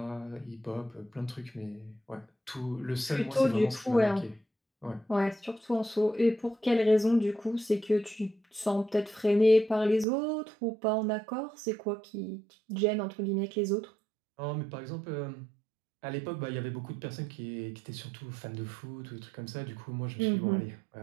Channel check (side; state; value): left; drops out; at 10.1 s